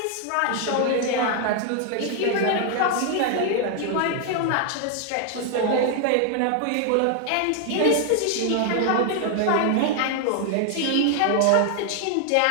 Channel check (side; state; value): both; different; correlation 0.00